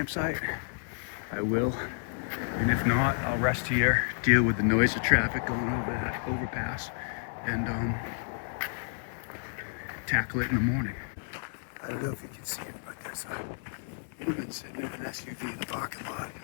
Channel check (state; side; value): silent; right; 57 dB below the other